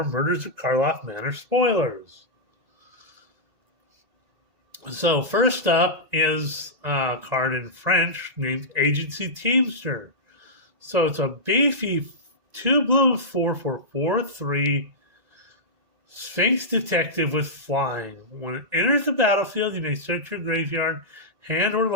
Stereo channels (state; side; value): late; left; 1.9 ms